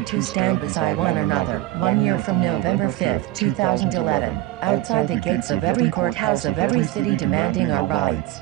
to stand beside one another, 1 year from November 5th, 2011, outside the gates of every courthouse of every city demanding our rights.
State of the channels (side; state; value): left; quieter; 15.7 dB